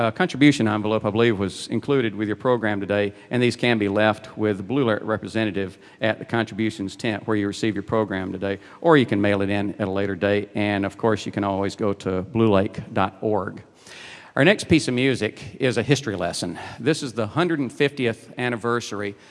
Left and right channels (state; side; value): identical; both; correlation 1.00